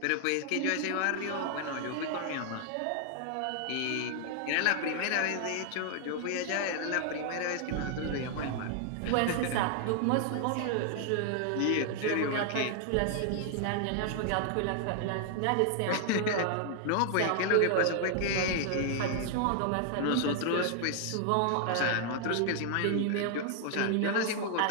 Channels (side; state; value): both; different; correlation 0.00